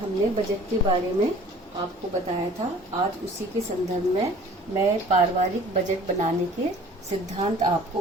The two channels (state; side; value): normal; both; correlation 0.48